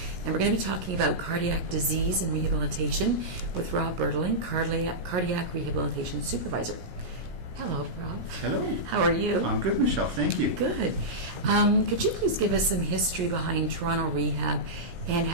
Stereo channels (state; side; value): late; left; 17 ms